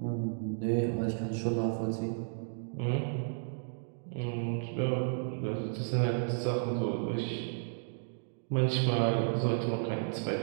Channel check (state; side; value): silent; left; digital silence